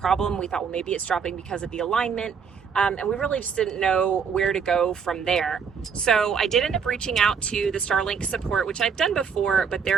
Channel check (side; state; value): left; quieter; 6.4 dB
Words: We thought, well, maybe it's dropping because of the alignment. And we really just didn't know where to go from there. So I did end up reaching out to the Starlink support, which I've done before, but